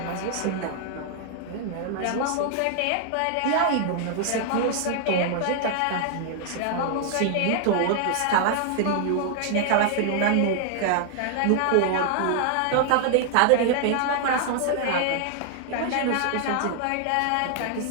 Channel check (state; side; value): different; both; correlation 0.00